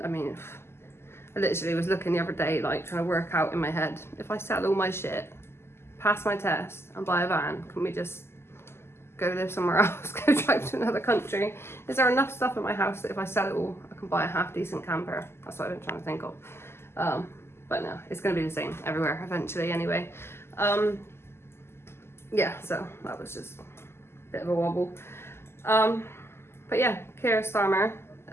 I mean, I literally was looking the other day like trying to work out in my head, if I sell all my shit, pass my test and buy a van, can we just go live somewhere else, go drive to another country? Is there enough stuff in my house that if I sell it all, I can buy a half decent camper? That's what I've been trying to think of. But no, it's going to be the same everywhere eventually anyway. Yeah, so that was just a bit of a wobble. But yeah, Keir Starmer,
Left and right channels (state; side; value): late; right; 0.12 ms